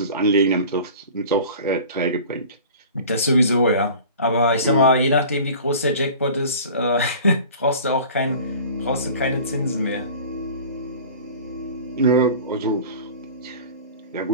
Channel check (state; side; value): inverted; both; correlation -0.41